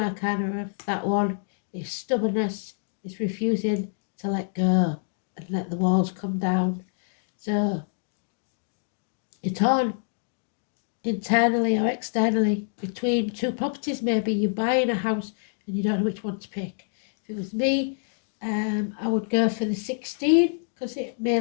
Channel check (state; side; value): silent; right; digital silence